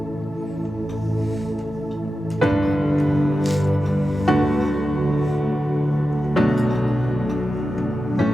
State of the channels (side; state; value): both; normal; correlation 0.92